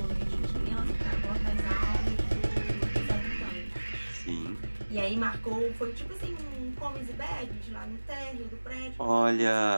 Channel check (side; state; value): both; inverted; correlation -1.00